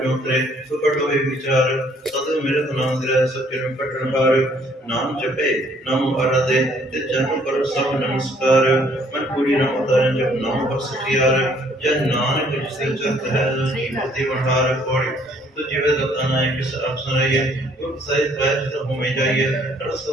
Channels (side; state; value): both; normal; correlation 0.63